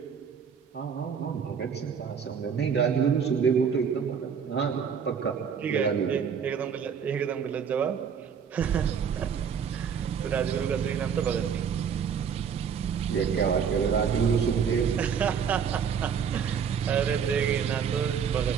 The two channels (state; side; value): quieter; left; 7.1 dB